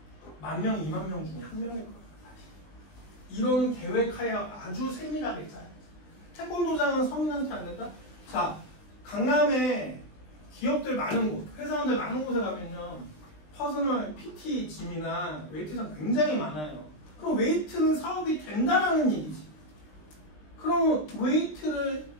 10,000명, 20,000명 중에 한 명일 거예요. 이런 계획하에 아주 세밀하게 짜요. 태권도장은 서민한테 안 된다? 자, 강남에 기업들 많은 곳, 회사원들 많은 곳에 가면요. 퍼스널 PT 짐이나 웨이트장 굉장히 많아요. 그럼 웨이트는 사업이 된다라는 얘기지. 그럼 웨이트를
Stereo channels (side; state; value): right; late; 20 ms